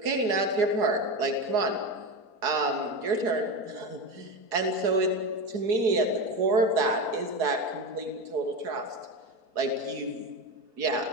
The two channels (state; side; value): late; left; 4.8 ms